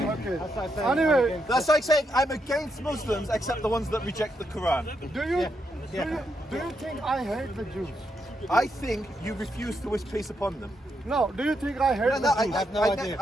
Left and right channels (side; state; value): both; normal; correlation 0.80